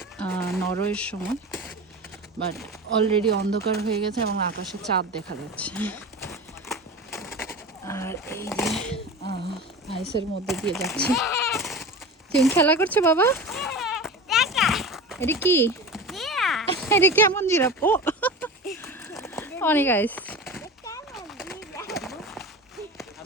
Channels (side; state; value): both; normal; correlation 0.31